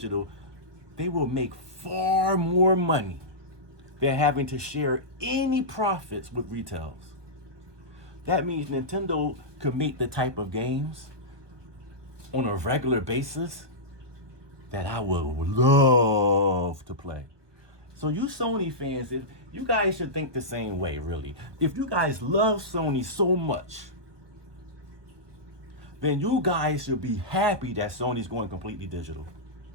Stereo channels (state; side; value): late; left; 1.2 ms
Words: they will make far more money than having to share any profits with retails. That means Nintendo could make the type of games on a regular basis that I would love to play. So you Sony fans, if you guys should think the same way, really. If you guys love Sony so much, then you guys should be happy that Sony's going completely digital.